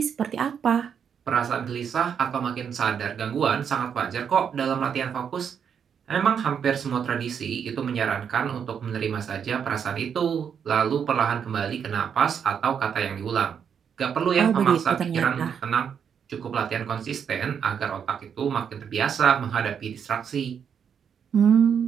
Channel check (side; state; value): left; quieter; 7.5 dB